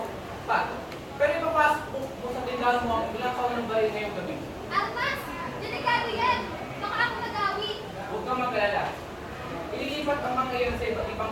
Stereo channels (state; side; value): identical; both; correlation 1.00